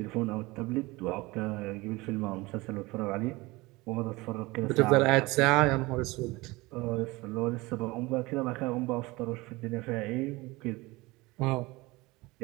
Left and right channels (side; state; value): left; quieter; 22.1 dB